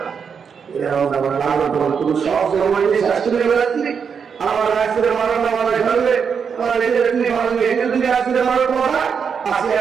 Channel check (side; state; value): left; quieter; 6.5 dB